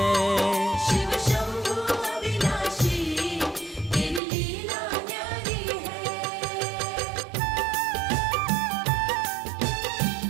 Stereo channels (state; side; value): drops out; left; at 4.2 s